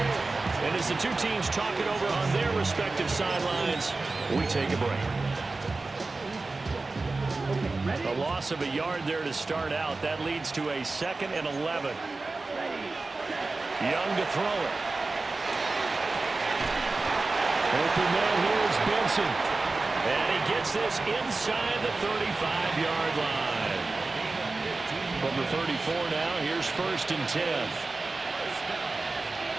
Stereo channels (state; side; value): quieter; left; 3.5 dB